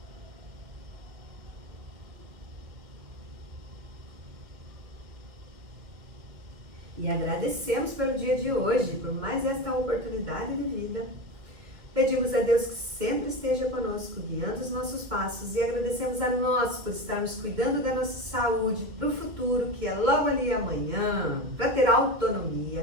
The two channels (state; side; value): late; left; 2.4 ms